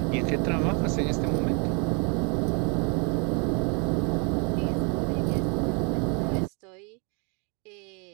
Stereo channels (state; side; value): quieter; left; 34.4 dB